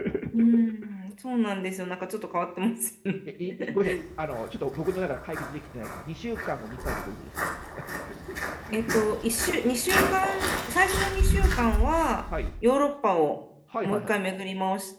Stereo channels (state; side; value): identical; both; correlation 1.00